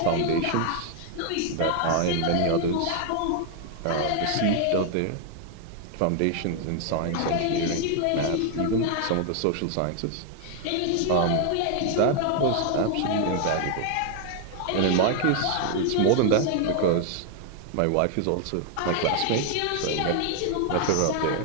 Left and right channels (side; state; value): both; different; correlation 0.00